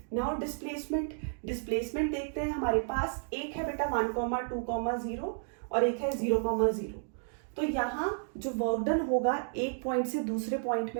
नाउ डिस्प्लेसमेंट देखते हैं। हमारे पास एक है बेटा 1, 2, 0 और एक है 0, 0। तो यहाँ जो वर्क डन होगा एक पॉइंट से दूसरे पॉइंट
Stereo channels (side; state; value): left; silent; digital silence